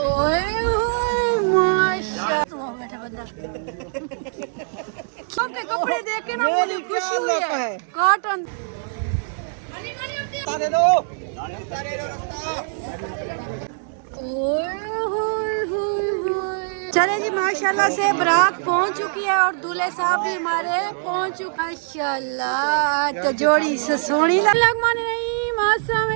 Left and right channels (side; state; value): left; silent; digital silence